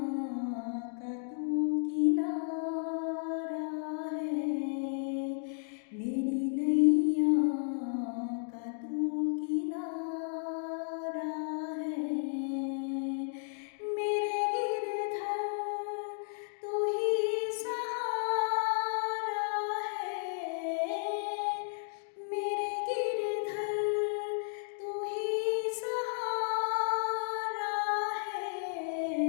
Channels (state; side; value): silent; right; digital silence